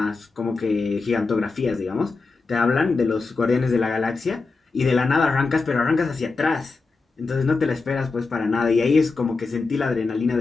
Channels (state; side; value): quieter; right; 4.1 dB